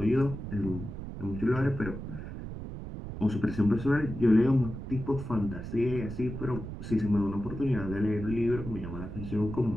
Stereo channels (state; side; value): noise; right; rumble, 8 dB below the sound